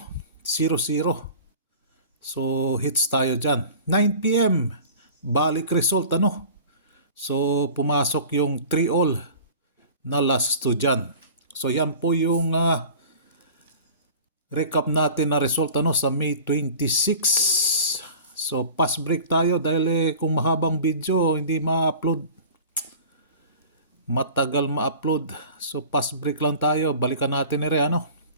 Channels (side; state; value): both; inverted; correlation -0.42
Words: So hits tayo dyan. 9 p.m. balik result So pumasok yung 3 all na last 2 dyan. So yan po yung recap natin na result sa May 26. So pass break tayo dahil kung mahabang video hindi ma-upload. Matagal ma-upload. So pass break lang tayo. Balikan natin